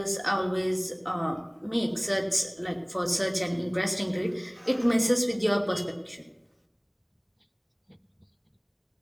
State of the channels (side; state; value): both; identical; correlation 1.00